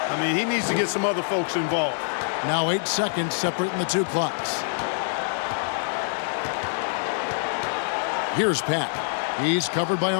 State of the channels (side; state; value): right; silent; digital silence